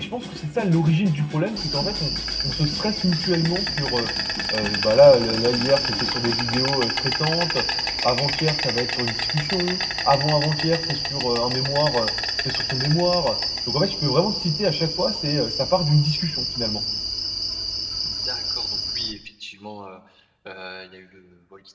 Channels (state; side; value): identical; both; correlation 1.00